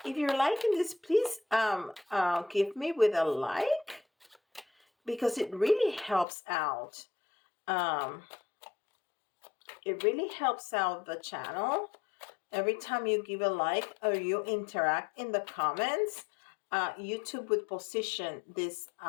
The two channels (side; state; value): right; drops out; at 6.2 s